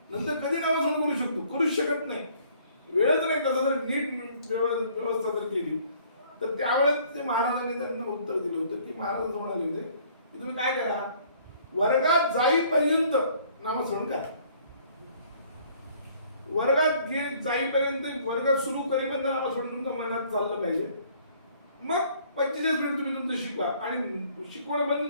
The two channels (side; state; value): both; inverted; correlation -0.59